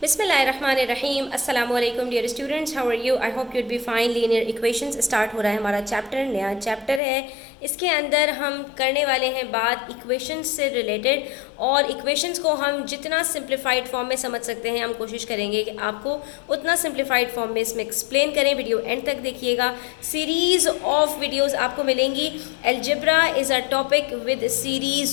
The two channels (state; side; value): drops out; right; at 7.0 s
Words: बिस्मिल्लाहिर्रहमानिर्रहीम अस्सलामुअलैकुम dear students, how are you? I hope you'd be fine. Linear equations start हो रहा है हमारा चैप्टर, नया चैप्टर है। इसके अंदर हम करने वाले हैं बात इक्वेशंस से रिलेटेड, और इक्वेशंस को हम जितना सिंप्लीफाइड फॉर्म में समझ सकते हैं हम कोशिश करेंगे कि आपको उतना सिंप्लीफाइड फॉर्म में इसमें एक्सप्लेन करें। वीडियो एंड तक देखिएगा, सीरीज़ ऑफ वीडियोज़ आपको मिलेंगी। Algebra is a topic with